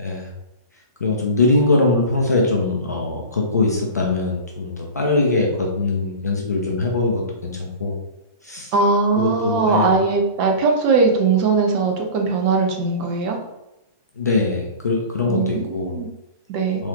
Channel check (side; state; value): both; inverted; correlation -0.32